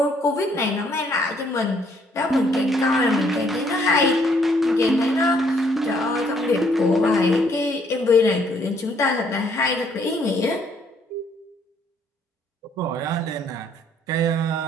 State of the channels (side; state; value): both; normal; correlation 0.67